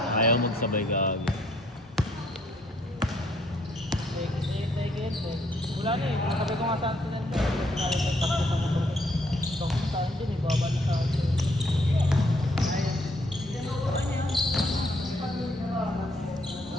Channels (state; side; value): normal; both; correlation 0.68